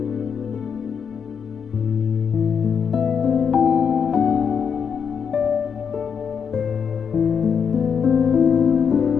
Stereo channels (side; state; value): right; quieter; 6.8 dB